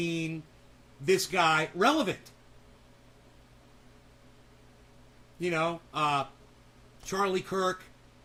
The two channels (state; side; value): identical; both; correlation 1.00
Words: This guy. Relevant. You know, Charlie Kirk.